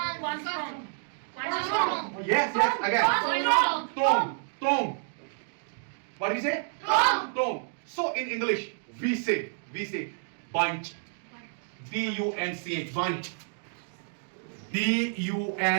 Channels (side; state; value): left; silent; digital silence